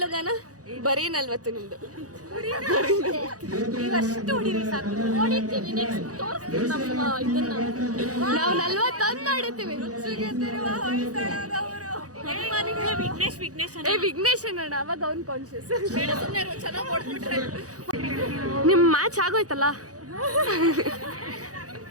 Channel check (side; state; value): left; late; 0.67 ms